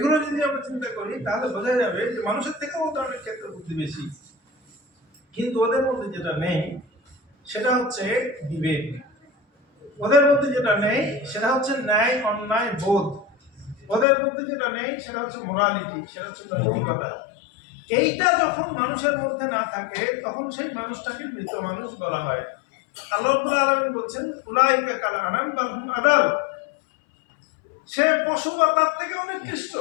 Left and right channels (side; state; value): right; drops out; at 14.1 s